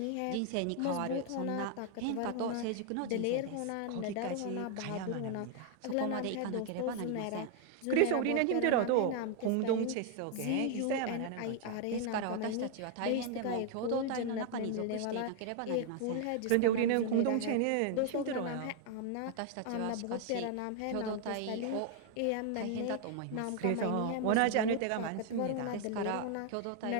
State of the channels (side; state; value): both; different; correlation 0.00